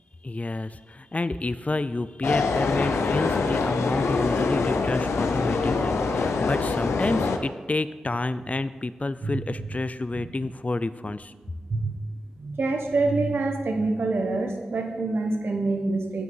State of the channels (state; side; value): normal; both; correlation 0.87